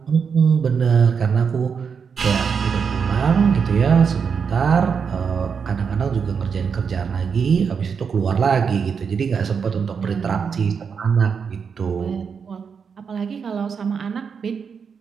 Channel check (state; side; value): quieter; left; 6.3 dB